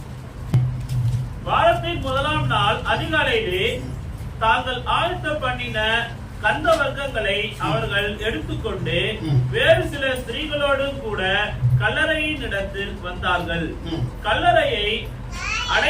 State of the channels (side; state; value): both; identical; correlation 1.00